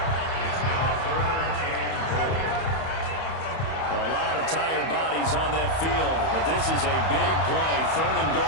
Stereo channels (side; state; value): right; late; 31 ms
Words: A lot of tired bodies on that field, but this is a big play, 3rd and